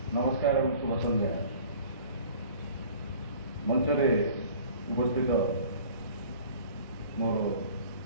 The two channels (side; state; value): both; inverted; correlation -0.47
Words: नमस्कार और शुभ संध्या। मंचरे उपस्थित मोर